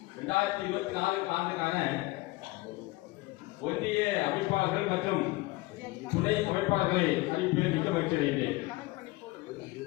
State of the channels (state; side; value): quieter; right; 21.1 dB